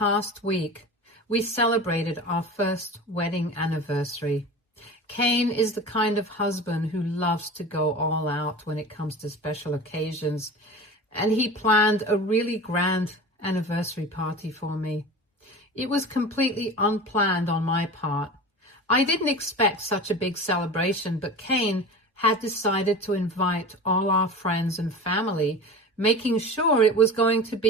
week, we celebrated our first wedding anniversary. Cain is the kind of husband who loves to go all out when it comes to special occasions, and he planned a really grand anniversary party for me. It was completely unplanned on my part. I didn't expect such a big celebration, but Cain had decided to invite all our friends and family, making sure it was going to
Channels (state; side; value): normal; both; correlation 0.34